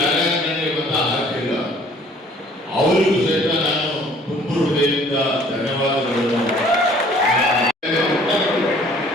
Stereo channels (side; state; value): both; normal; correlation 0.56